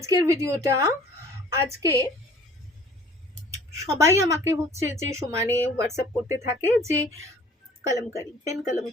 ভিডিওটা আজকে সবাই আমাকে হচ্ছে যে সমানে হোয়াটসঅ্যাপ করতে থাকে যে কলমকারি, পেন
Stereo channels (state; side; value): normal; both; correlation 0.52